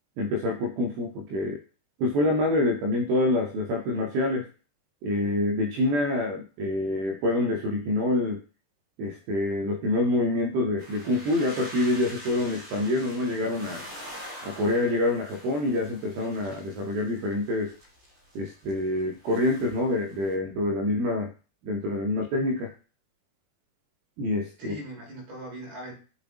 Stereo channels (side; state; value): left; late; 21 ms